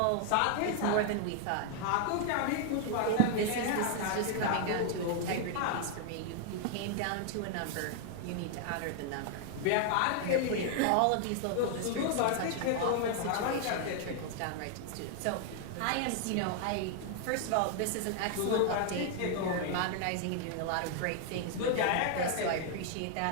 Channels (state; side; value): different; both; correlation 0.00